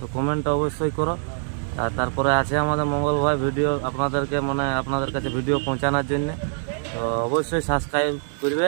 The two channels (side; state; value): left; silent; 63 dB below the other